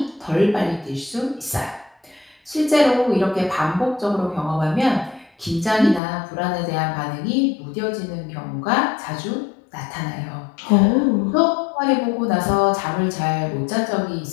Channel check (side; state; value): right; drops out; at 6.0 s